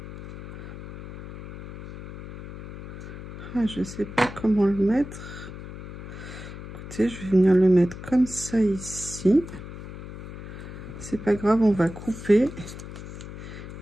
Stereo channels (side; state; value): left; noise; hum, 11 dB below the sound